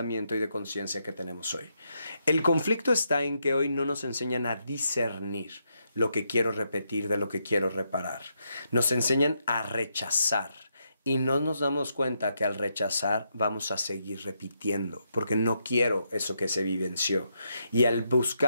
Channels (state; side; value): inverted; both; correlation -0.80